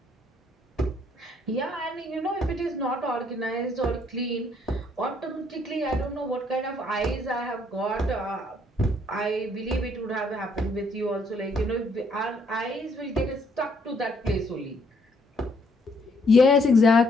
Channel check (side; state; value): both; normal; correlation 0.68